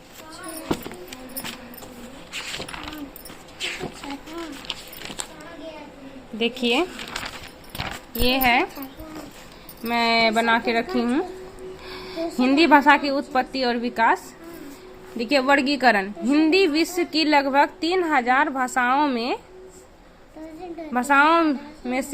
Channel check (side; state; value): both; identical; correlation 1.00